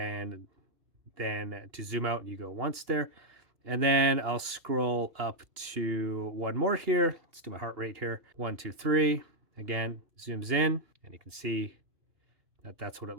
then to zoom out, you go once there. And then I'll scroll up to one more here. Let's do my heart rate here. 1, 2, 3. Again, zooms in, and you can see that that's what it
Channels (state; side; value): late; left; 2.8 ms